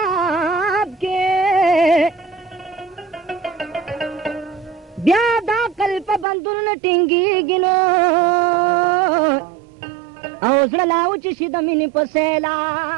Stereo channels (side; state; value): left; drops out; at 6.2 s